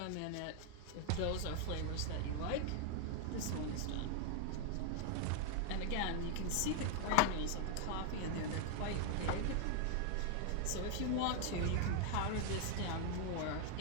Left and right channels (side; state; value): both; different; correlation 0.00